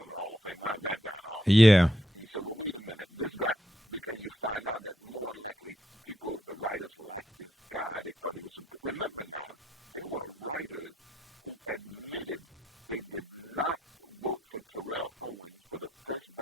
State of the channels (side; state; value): both; normal; correlation 0.78